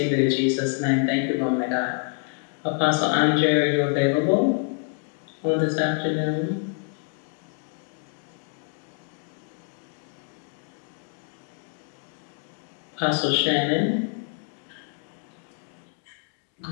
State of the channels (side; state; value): right; quieter; 38.4 dB